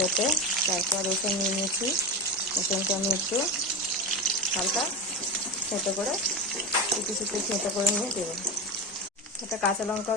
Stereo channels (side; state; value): both; normal; correlation 0.20